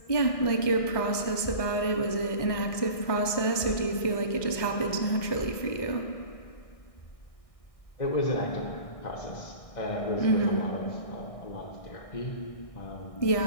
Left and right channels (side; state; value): right; late; 1.6 ms